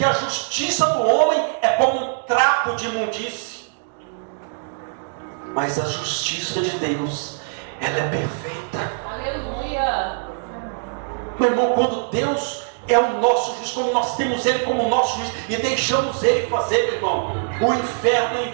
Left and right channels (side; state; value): left; silent; digital silence